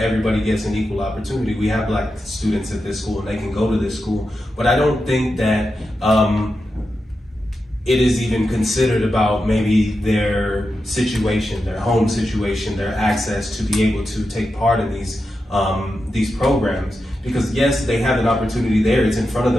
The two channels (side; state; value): both; normal; correlation 0.89